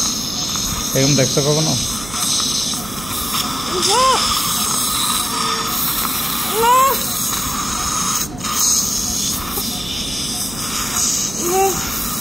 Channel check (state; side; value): noise; right; hum, 14 dB below the sound